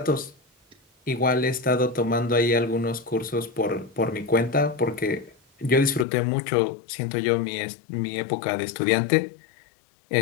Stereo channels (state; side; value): drops out; right; at 6.1 s